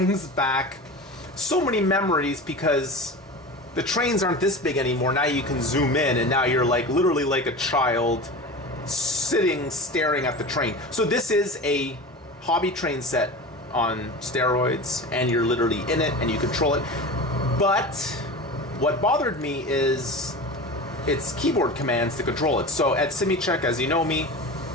back so many memories because the trains aren't this big anymore. Now you can zoom in, and now you're like literally like a child sitting staring at the train. So this is a hobby train set on steroids, and you're literally in it and you control it. But what bothered me is it's keyboard commands to control it. So at SimiCheck, as you know me,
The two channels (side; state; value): both; normal; correlation 0.31